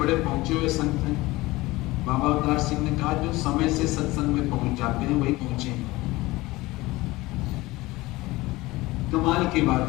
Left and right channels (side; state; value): right; quieter; 20.0 dB